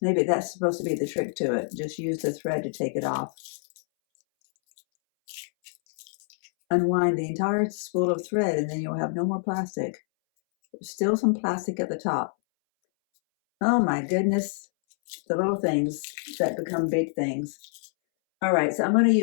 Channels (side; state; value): right; silent; 61 dB below the other